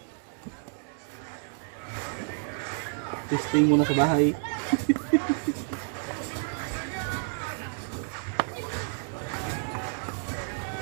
Testing muna sa bahay.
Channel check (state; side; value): silent; left; digital silence